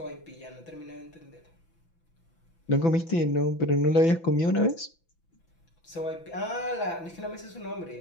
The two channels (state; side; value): late; right; 6.0 ms